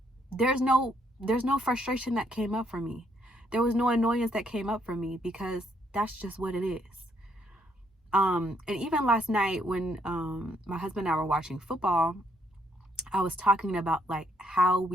there's no frustration that came up for me. There was no annoyance that came up for me, because that's just what it is. And even last night when my husband and I were watching football, I was talking about like how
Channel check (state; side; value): normal; both; correlation 0.71